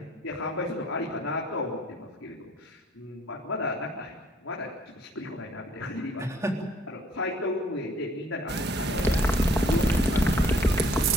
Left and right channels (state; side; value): normal; both; correlation 0.61